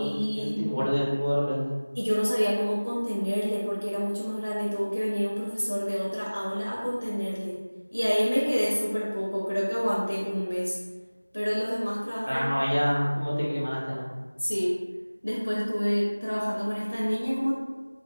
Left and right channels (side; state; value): both; inverted; correlation -1.00